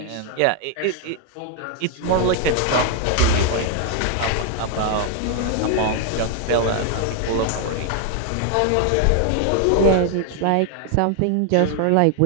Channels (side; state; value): both; different; correlation 0.00